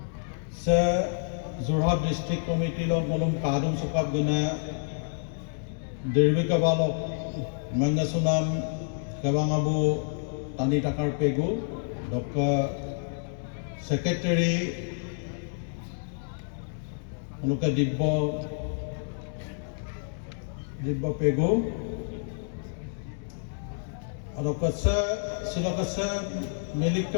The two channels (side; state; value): right; silent; digital silence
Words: সে যোৰহাট ডিস্ট্ৰিক্ট কমিটি লক মলুম কাদুম চকাপ গুনা দীৰ্ঘিকাবালক মংগাসুনাম কেবাঙাবু টানি টাকাৰ পেগু ডক্টৰ সেক্রেটারি অনুকে দিব্য পেগু অদকছে সিলকছে